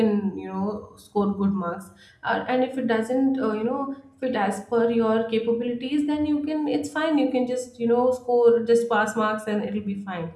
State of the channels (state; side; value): identical; both; correlation 1.00